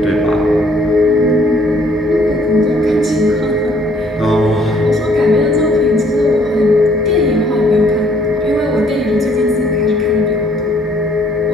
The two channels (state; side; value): normal; both; correlation 0.63